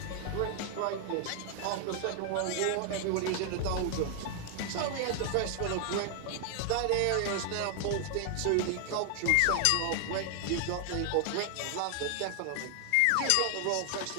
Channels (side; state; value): both; different; correlation 0.00